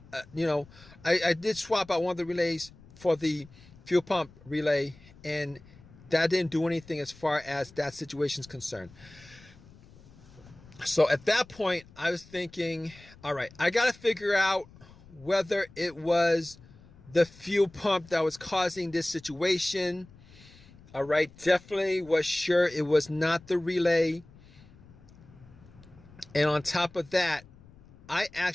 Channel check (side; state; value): left; noise; rumble, 23 dB below the sound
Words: I did swap out one of the relays for the fuel pump relay, and that didn't do anything as far as that situation is concerned. So at that point, I was thinking, all right, I got to figure out whether it was the fuel pump that was causing this situation. All right, definitely was sure it was not the relay. And on top of that, I